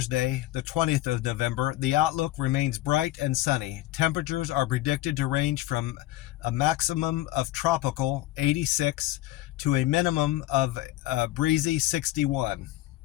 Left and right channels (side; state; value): right; quieter; 16.1 dB